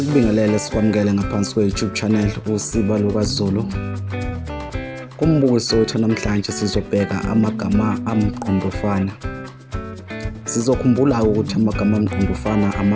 sikwamukele ngaphansi kwe-YouTube channel uSiba lukaZulu. Kumbukiso wethu namhlanje sizobheka amagama amqondofana. Sizokhumbula ukuthi amagama amqondofana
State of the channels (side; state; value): both; identical; correlation 1.00